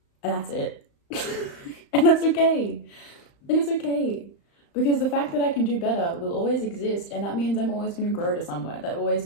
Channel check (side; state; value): right; late; 35 ms